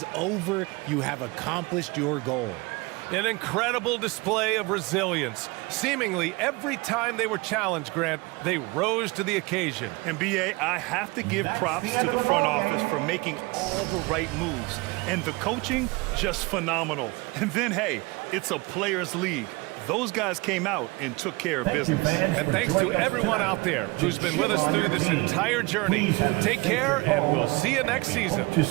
over. You have accomplished your goal. An incredible display of resilience. Seemingly every time they were challenged, Grant, they rose to the occasion. And B.A., I have to give props to the front office for making all the right moves. And the coaching, just phenomenal. And then, hey, it's a players' league. Those guys came out and took care of business. And thanks to everyone out there who's been with us through this entire journey. Take care, and we'll see you next season. Hope to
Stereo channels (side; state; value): left; quieter; 24.8 dB